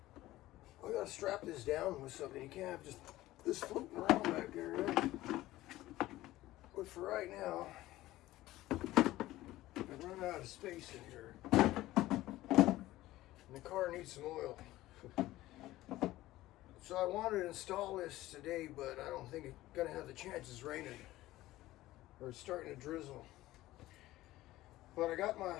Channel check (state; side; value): quieter; right; 16.4 dB